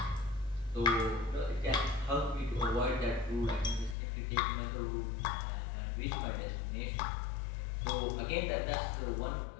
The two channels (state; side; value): drops out; right; at 4.0 s